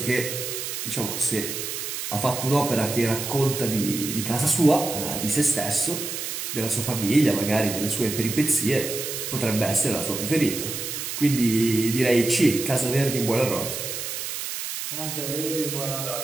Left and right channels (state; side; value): noise; right; hiss, 5 dB below the sound